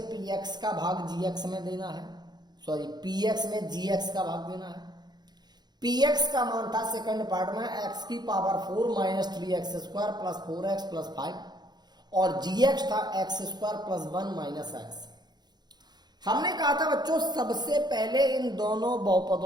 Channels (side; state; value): left; late; 0.20 ms